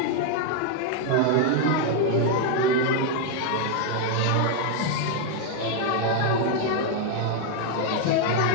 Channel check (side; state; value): both; different; correlation 0.00